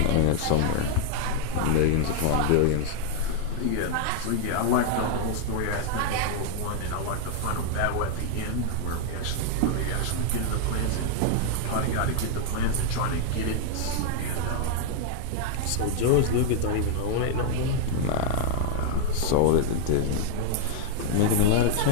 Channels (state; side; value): different; both; correlation 0.00